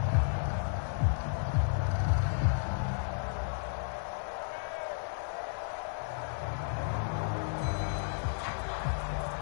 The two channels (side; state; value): right; silent; 56 dB below the other